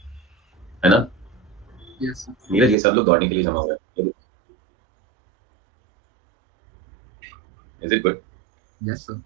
है ना? Yes sir. नीरज, ये सब लोग दौड़ने के लिए जमा हुए हैं, is it good? Yes sir.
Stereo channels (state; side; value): drops out; left; at 2.8 s